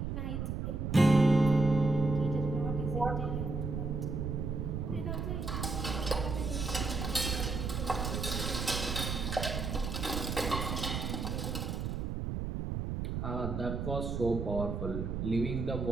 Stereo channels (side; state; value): right; noise; rumble, 2 dB below the sound